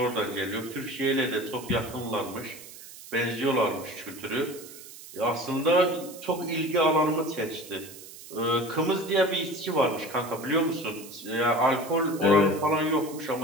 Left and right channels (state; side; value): noise; right; hiss, 16 dB below the sound